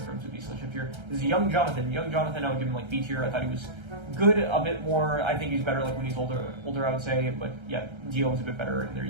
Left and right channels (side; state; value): left; late; 1.3 ms